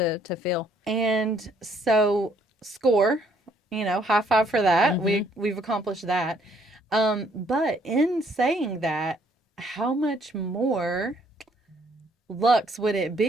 feel. And so score, high five for that. Mm-hmm. We've accomplished that. But in saying that, how much more Lux would it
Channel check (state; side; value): normal; both; correlation 0.66